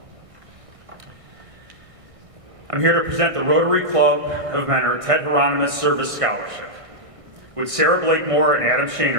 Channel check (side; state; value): left; late; 1.6 ms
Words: I'm here to present the Rotary Club of Mentor Ted Hieronymus Service Scholarship. Would Sarah Blakemore and Adam